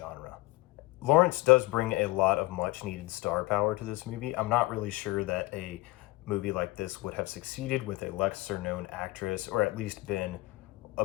Lawrence does bring a lot of much-needed star power to this movie. I'm not really sure that a movie like this would have succeeded with a lesser-known actress, or at least been a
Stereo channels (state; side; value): quieter; right; 20.7 dB